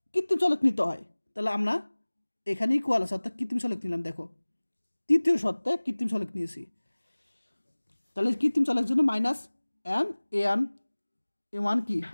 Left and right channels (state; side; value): inverted; both; correlation -1.00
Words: কৃত্রিম চলক নিতে হয়। তাহলে আমরা এখানে ইকুয়াল আছে অর্থাৎ কৃত্রিম চলক নিলাম। দেখো তৃতীয় শর্তে কৃত্রিম চলক নিয়েছি, তাহলে কৃত্রিম চলকের জন্য -m a1 কি